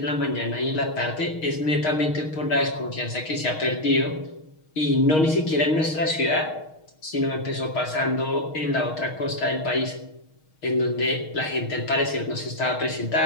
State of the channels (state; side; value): late; right; 6.4 ms